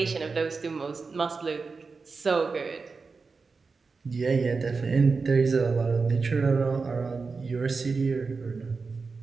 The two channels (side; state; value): left; quieter; 4.5 dB